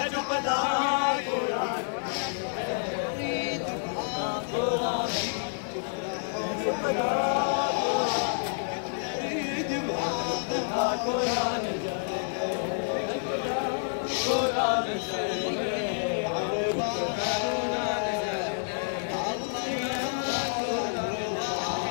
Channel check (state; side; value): silent; right; digital silence